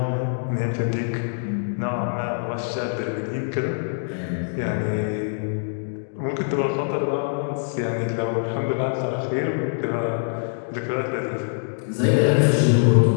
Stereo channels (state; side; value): silent; right; digital silence